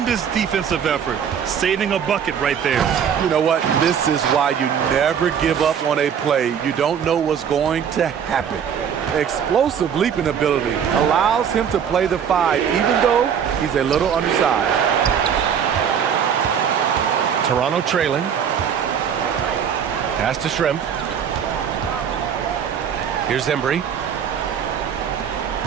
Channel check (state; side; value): quieter; left; 7.9 dB